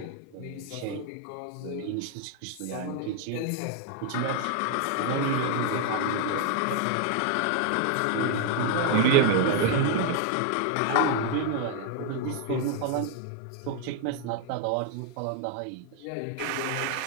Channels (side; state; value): both; different; correlation 0.00